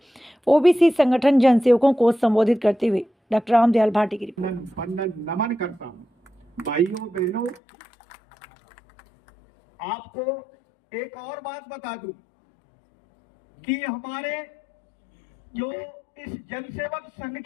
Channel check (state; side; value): drops out; right; at 7.6 s